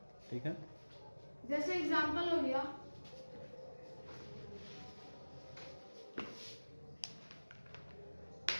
ठीक है, जैसे एग्जांपल हो गया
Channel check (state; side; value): inverted; both; correlation -1.00